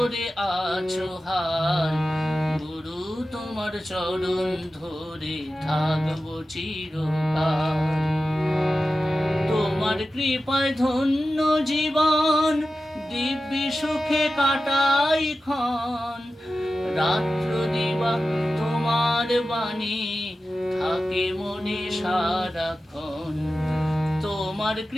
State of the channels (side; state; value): both; normal; correlation 0.93